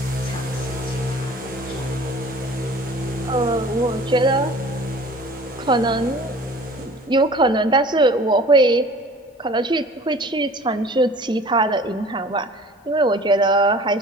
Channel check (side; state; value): both; normal; correlation 0.46